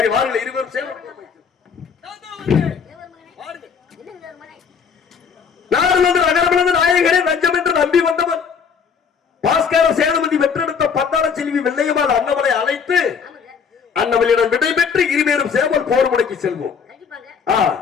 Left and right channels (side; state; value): right; quieter; 6.4 dB